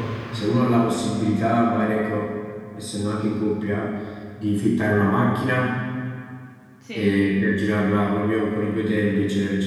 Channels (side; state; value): both; identical; correlation 1.00